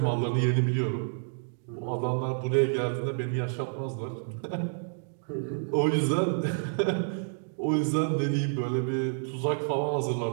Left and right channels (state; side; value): silent; left; digital silence